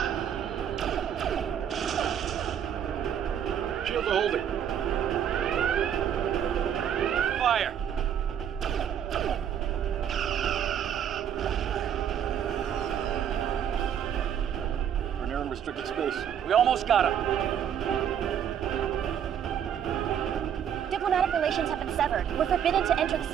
Shields are holding. Fire. We're near unrestricted space. We almost got him. Diplomatic relations have been severed. We're forbidden to enter the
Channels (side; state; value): left; quieter; 9.1 dB